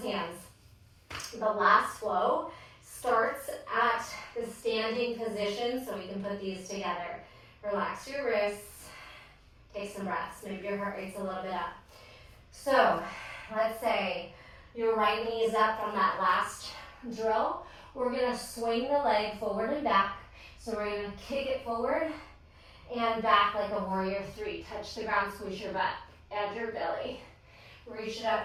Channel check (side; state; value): both; identical; correlation 1.00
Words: hands. The last flow starts at the standing position, so we can put these together. Relax your wrists, take some breaths. Maybe your heart rate's a little bit up. So, let's say your right knee is up from that last drill. We're gonna swing the leg forward and back. So we're gonna kick it forward and back like a warrior 3. Touch the ground, squeeze your butt. Add your belly. Reach it